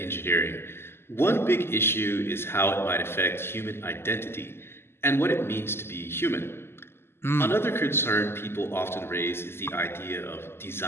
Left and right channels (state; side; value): late; right; 0.12 ms